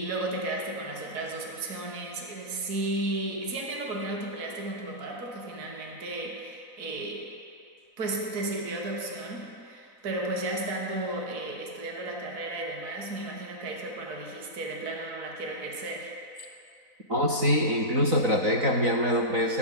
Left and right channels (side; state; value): left; late; 4.0 ms